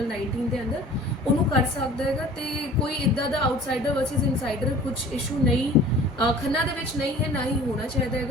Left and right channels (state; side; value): normal; both; correlation 0.46